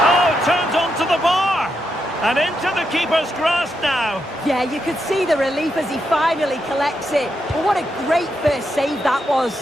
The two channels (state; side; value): normal; both; correlation 0.83